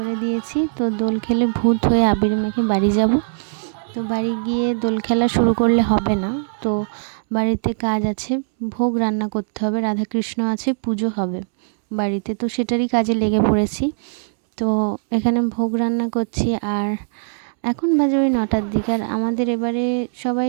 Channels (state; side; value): silent; left; 65 dB below the other